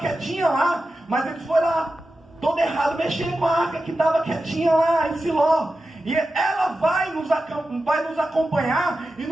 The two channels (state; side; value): normal; both; correlation 0.92